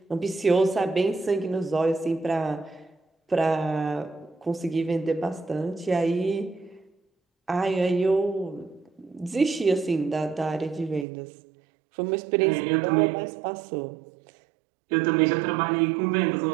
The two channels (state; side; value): drops out; left; at 11.1 s